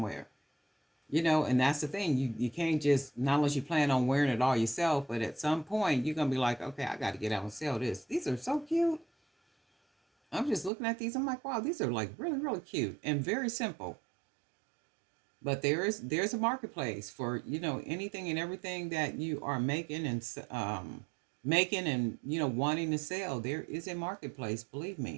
And that's the thing. You can't just, not unless you plan on wearing it all yourself, but at some point you're gonna be like, okay, I got to get out and sell this. These are so cute. I'm just looking at these. I'm like, wow, these are like really, really cute and very simple. But there's a marketplace for anything and everything that you are making and wanting to sell. There is a marketplace, believe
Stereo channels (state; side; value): drops out; left; at 10.7 s